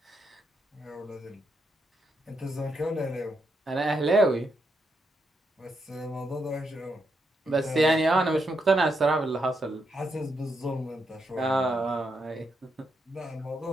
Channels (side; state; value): both; normal; correlation 0.81